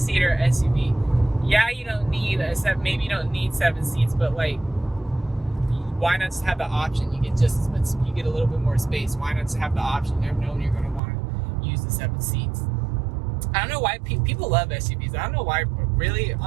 SUV. Yeah, you don't need maybe you don't need 7 seats, but like, why not just have the option? You get just as much, you get a little bit more space. Why not just have the option? You never know when you're going to want to use the 7 seats. I don't know why people love SUVs. I don't know why, really,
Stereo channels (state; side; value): drops out; left; at 11.0 s